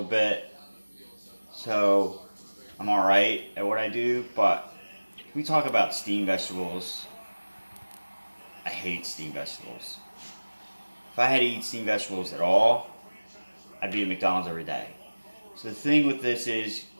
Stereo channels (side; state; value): both; inverted; correlation -1.00